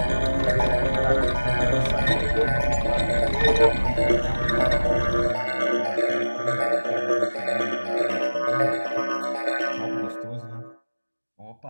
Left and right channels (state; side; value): inverted; both; correlation -1.00